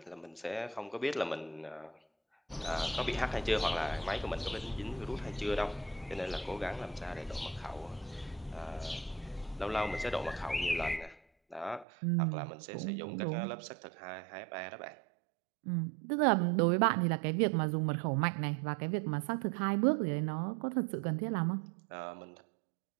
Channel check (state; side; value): drops out; left; at 11.9 s